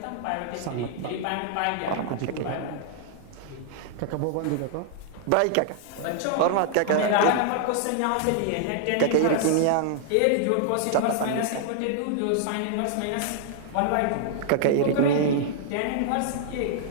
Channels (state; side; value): different; both; correlation -0.01